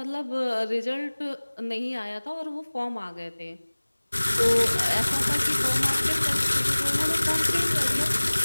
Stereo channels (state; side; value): inverted; both; correlation -1.00